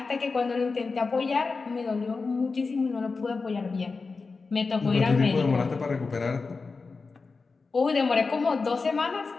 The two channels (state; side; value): quieter; right; 4.3 dB